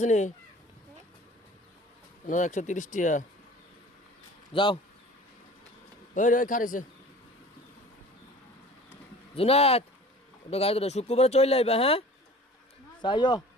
130 টিয়া। যাও ওই ওই খারিছে জুনাত, ওটা গাড়ি ধরে শুক্রবারে চলে আইবা। হ্যাঁ চাইও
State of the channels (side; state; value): both; normal; correlation 0.44